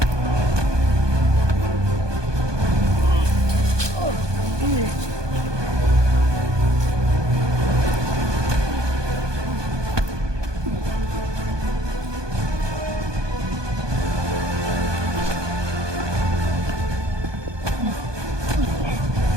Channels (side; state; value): left; late; 1.2 ms